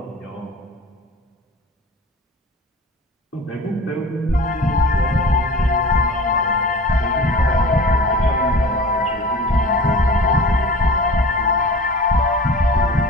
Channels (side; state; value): both; normal; correlation 0.39